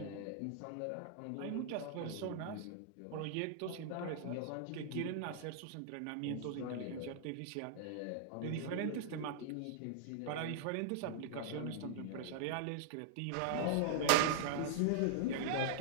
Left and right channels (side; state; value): both; different; correlation -0.01